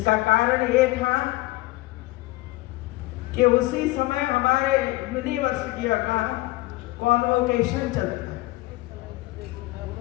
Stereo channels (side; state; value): right; quieter; 19.8 dB